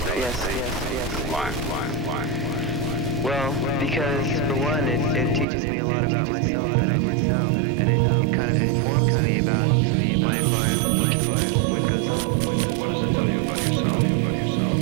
Yes. Why? Well, because for one, it teaches me a lot about myself that I didn't know, and it kind of informs me about my environment, what goes on. What does it tell you about yourself?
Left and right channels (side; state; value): left; drops out; at 5.5 s